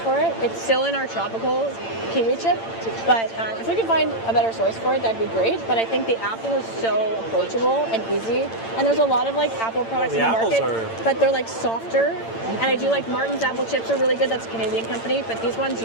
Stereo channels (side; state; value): right; late; 8.9 ms